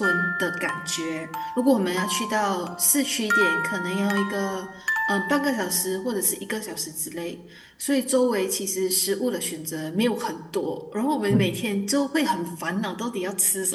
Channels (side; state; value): both; identical; correlation 1.00